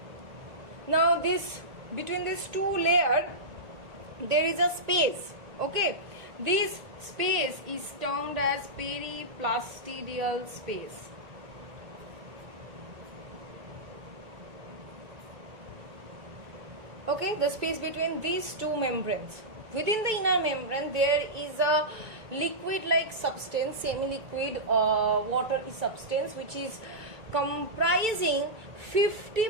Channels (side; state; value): left; late; 1.8 ms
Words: Now this, between these two layers there is a space. Okay, this space is termed as periplastidial space. Okay, the space between these two membranes. Within the inner membrane there is a liquid like substance, semi-liquid watery substance, which is comprising